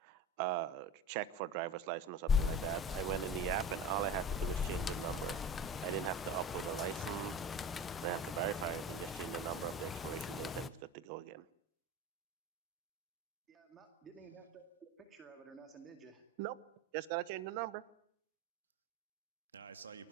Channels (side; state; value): both; normal; correlation 0.34